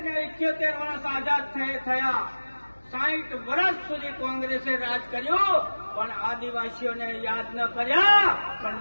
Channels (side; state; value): both; inverted; correlation -1.00